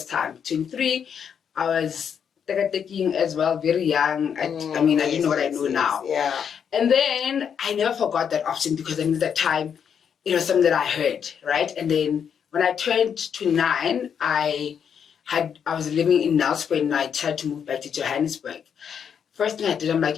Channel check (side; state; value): right; quieter; 7.6 dB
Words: time. 23, I was taking as well, very young. I mean, I didn't know what I know now. Yeah. And then I never forgot that option, because I knew that time it was something that I heard, right? And then when I turned 29, I was living in Nelspruit and I tried to move back to Johannesburg. First thing I did, I'm like,